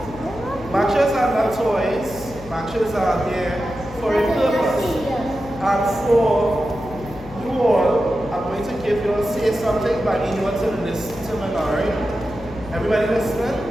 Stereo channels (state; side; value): noise; left; hum, 15 dB below the sound